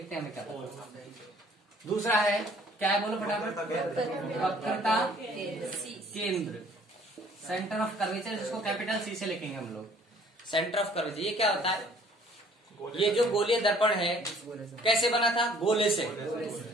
हैं हमें क्या पता। दूसरा है क्या है, बोलो फटाफट, वक्रता केंद्र, सेंटर ऑफ कर्वेचर, जिसको कैपिटल सी से लिखेंगे हम लोग, सेंटर ऑफ कर्वेचर। ये क्या होता है, ये जो गोलीय दर्पण है कैसे बना था, गोले से,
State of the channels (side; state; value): both; normal; correlation 0.56